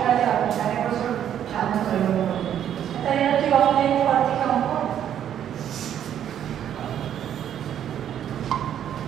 হবে তাহলে বছর ভালো করব তাহলে তুই অনলাইন কর থেকে অঙ্ক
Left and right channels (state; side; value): quieter; left; 10.0 dB